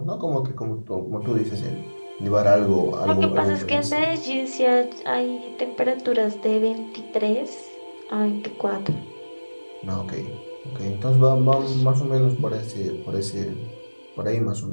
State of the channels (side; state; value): both; inverted; correlation -1.00